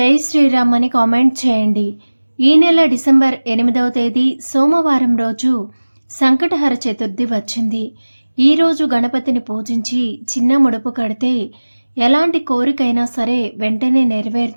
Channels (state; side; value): inverted; both; correlation -1.00